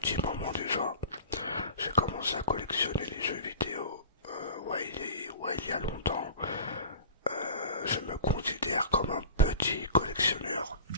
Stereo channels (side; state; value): both; inverted; correlation -0.37